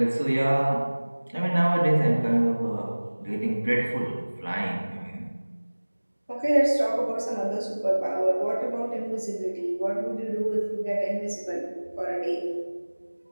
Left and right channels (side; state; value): both; inverted; correlation -1.00